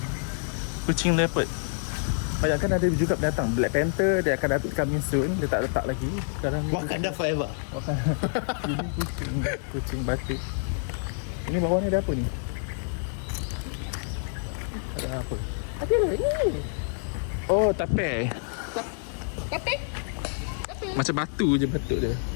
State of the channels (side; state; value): right; silent; 60 dB below the other